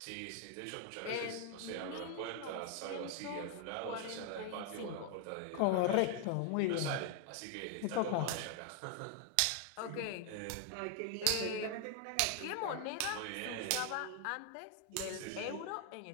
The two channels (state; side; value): different; both; correlation 0.00